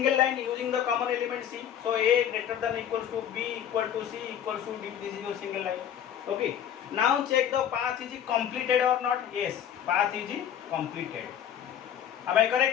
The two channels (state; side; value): quieter; right; 9.6 dB